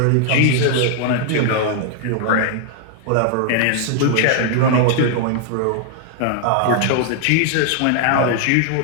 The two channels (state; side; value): different; both; correlation 0.00